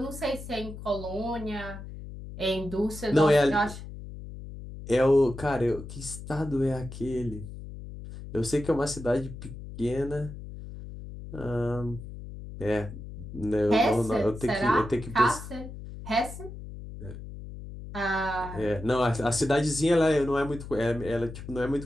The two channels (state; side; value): noise; left; hum, 12 dB below the sound